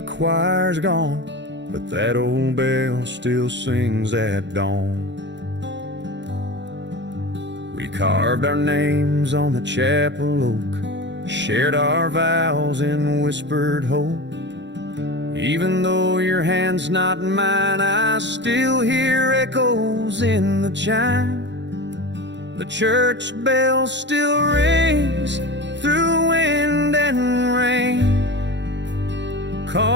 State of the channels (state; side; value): late; left; 0.52 ms